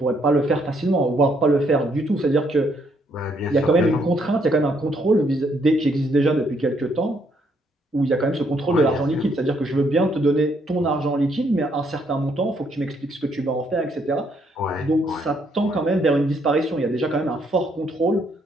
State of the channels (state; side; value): normal; both; correlation 0.71